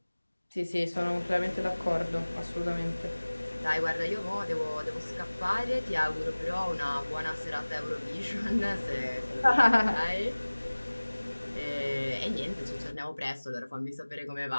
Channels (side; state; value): both; inverted; correlation -1.00